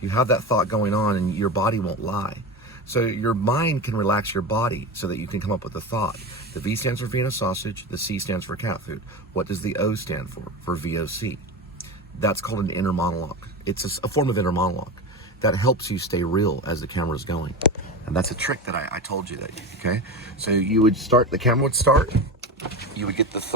You have that thought going on and your body won't lie. So your mind can relax your body so that you can come up with a thought. The V stands for Vienna sausage, the C stands for cat food. What does the O stand for? For VOC. That's called an inner monologue. It's a form of inner monologue that helps you stay real as the camera's going. And that's a trick that I told you that, okay? So you would start, the camera would start, you would get the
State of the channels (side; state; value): both; normal; correlation 0.23